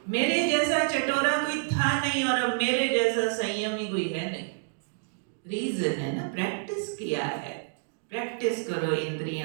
मेरे जैसा चटोरा कोई था नहीं और अब मेरे जैसा संयमी कोई है नहीं। रीजन है ना, प्रैक्टिस किया है। प्रैक्टिस करो,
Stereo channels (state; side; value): silent; left; digital silence